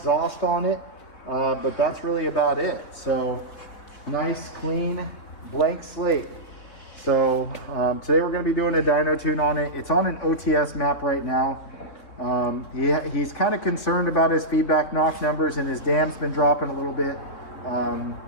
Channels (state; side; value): late; right; 3.6 ms